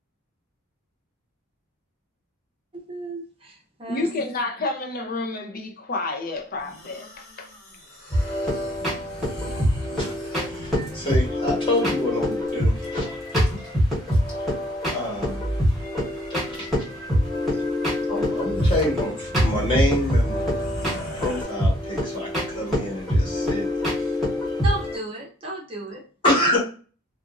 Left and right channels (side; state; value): both; normal; correlation 0.63